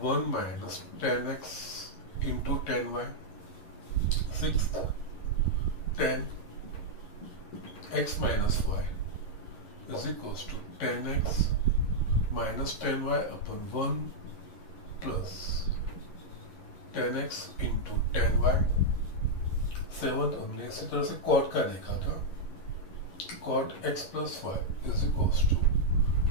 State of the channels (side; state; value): right; late; 11 ms